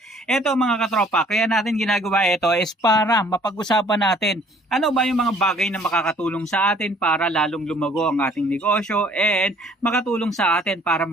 Ito mga katropa, kaya natin ginagawa ito is para mapag-usapan natin ano ba yung mga bagay na makakatulong sa atin para lalong lumago ang ating negosyo and makatulong sa atin para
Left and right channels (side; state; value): both; normal; correlation 0.57